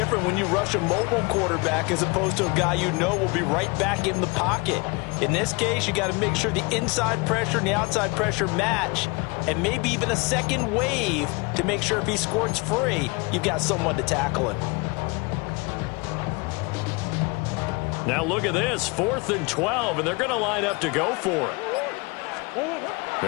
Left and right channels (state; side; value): quieter; right; 27.7 dB